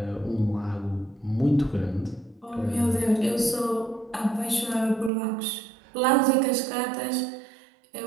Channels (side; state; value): left; drops out; at 5.1 s